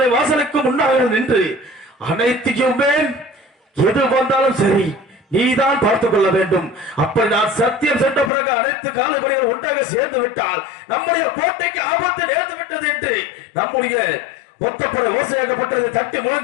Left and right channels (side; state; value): right; drops out; at 8.3 s